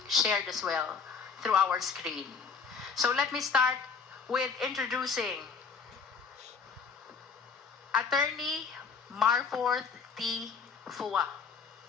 shared as well through our screen. So let me start with introducing Attorney Marforth T. Fua.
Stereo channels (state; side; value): quieter; right; 5.6 dB